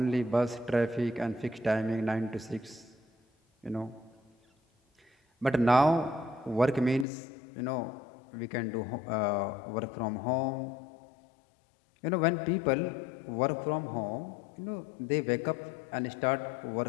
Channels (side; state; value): right; drops out; at 7.1 s